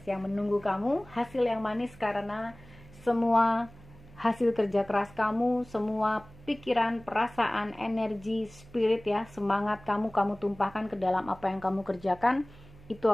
yang menunggu kamu, hasil yang manis karena semua hasil kerja keras kamu, semua pikiran, perasaan, energi, spirit ya, semangat kamu tumpahkan ke dalam apa yang kamu kerjakan, itu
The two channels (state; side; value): noise; right; hum, 22 dB below the sound